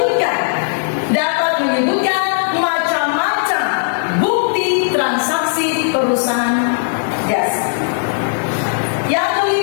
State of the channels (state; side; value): silent; right; digital silence